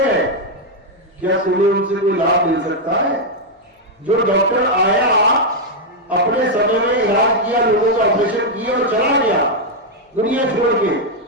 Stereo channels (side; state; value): both; normal; correlation 0.00